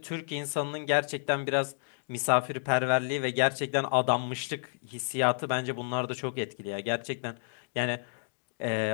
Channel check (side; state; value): right; silent; digital silence